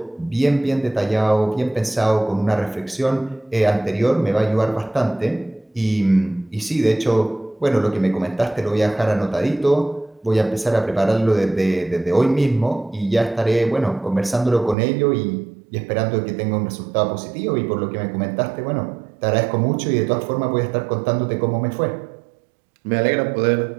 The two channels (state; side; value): drops out; left; at 14.8 s